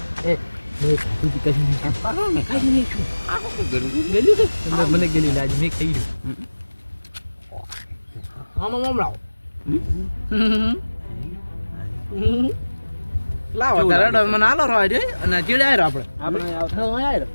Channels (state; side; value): inverted; both; correlation -1.00